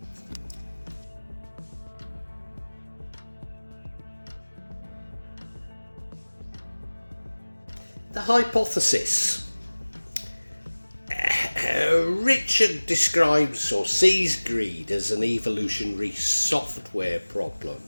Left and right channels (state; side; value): inverted; both; correlation -1.00